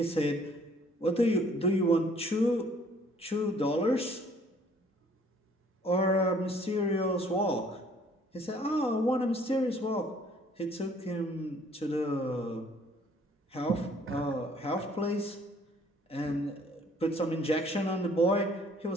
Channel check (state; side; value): normal; both; correlation 0.59